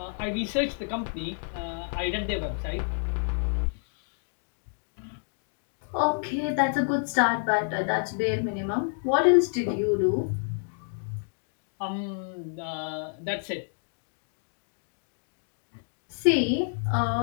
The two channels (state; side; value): silent; right; digital silence